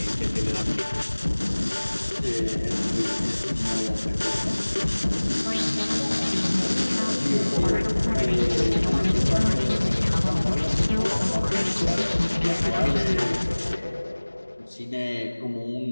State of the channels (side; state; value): both; inverted; correlation -1.00